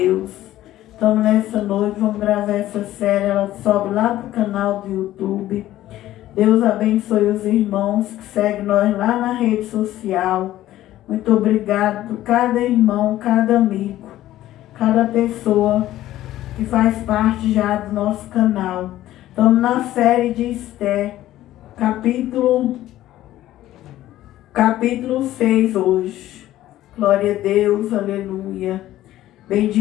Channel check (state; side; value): quieter; right; 14.2 dB